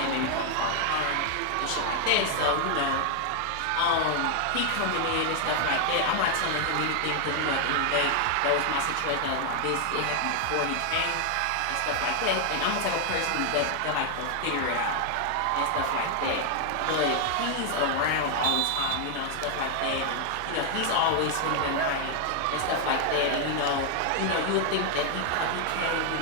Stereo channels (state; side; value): different; both; correlation 0.00